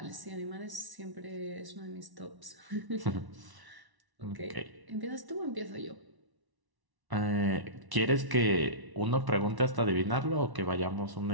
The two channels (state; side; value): late; left; 1.1 ms